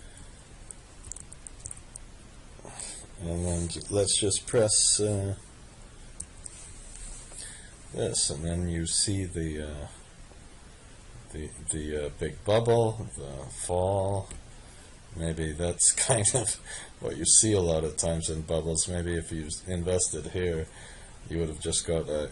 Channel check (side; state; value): both; identical; correlation 1.00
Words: then let's just press this, and then you see the big bubble, the fall. Maybe that's kind of what you see a lot of times in bubbles. Maybe if you invested here, you would have just got